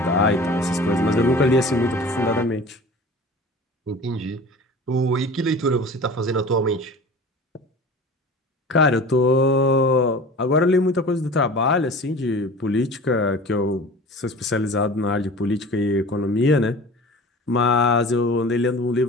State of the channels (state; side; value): normal; both; correlation 0.39